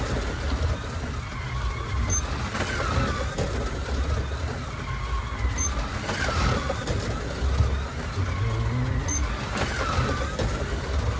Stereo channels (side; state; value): both; identical; correlation 1.00